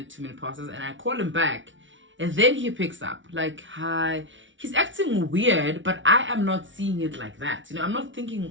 2 minute passes, and I call him back. And then he picks up, like, hi. He's acting weird, but I am not seeing it like that. I'm not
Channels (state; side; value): late; left; 0.56 ms